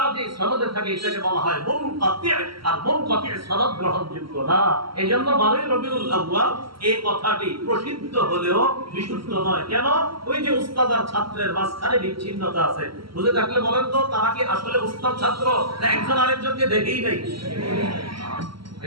যে সনদে থাকে এটাকে বলা হয় মুনকাতি। আর মুনকাতি সনদ গ্রহণযোগ্য না। এজন্য 12 রবিউল আউয়াল এই কথাটি প্রসিদ্ধ হলেও বিশুদ্ধ নয়। কেন? ওই যে উস্তাদ আর ছাত্রের মাঝখানে বিচ্ছিন্নতা আছে। বুঝে থাকলে বলেন তো, তারা কি আসলে উস্তাদ ছাত্র না একজন আরেকজনকে দেখেই নাই?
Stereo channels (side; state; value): left; late; 0.74 ms